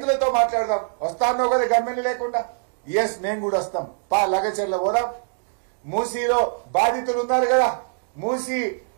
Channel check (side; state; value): left; silent; digital silence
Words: మాట్లాడదాం. వస్తానో కదా గమ్మెలు లేకుండా. ఎస్, మేము కూడా వస్తాం. లగచెర్ల పోదాం. మూసీలో బాధితులు ఉన్నారు కదా, మూసీ